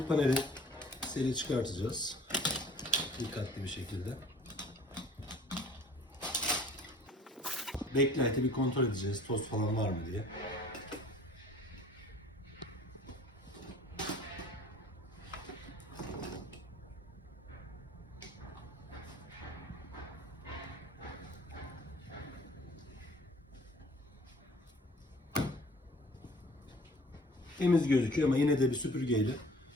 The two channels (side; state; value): both; normal; correlation 0.51